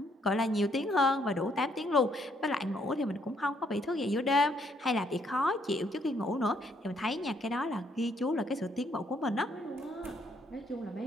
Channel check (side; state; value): both; normal; correlation 0.70